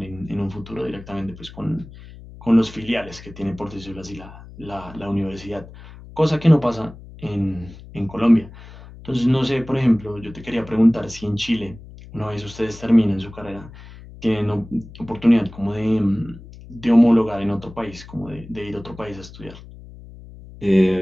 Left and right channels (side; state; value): left; noise; hum, 17 dB below the sound